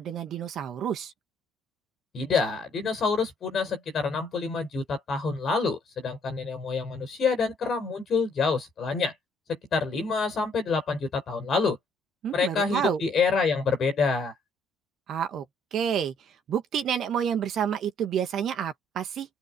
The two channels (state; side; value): normal; both; correlation 0.65